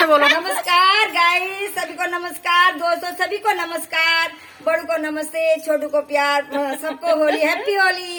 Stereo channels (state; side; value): identical; both; correlation 1.00